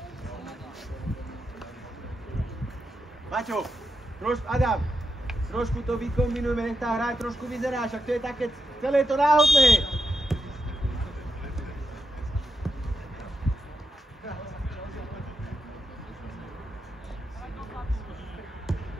Maťo, Adam, trošku to vykombinujme, nech tá hra trošku vyzerá, však to je také, celé je to náhodné.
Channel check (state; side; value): normal; both; correlation 0.84